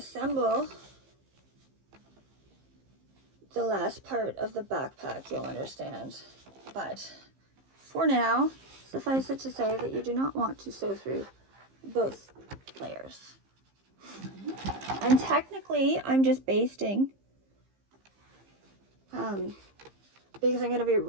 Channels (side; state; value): left; late; 15 ms